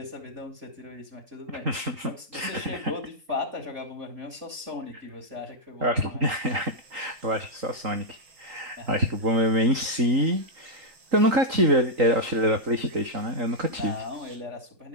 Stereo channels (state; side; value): late; left; 3.8 ms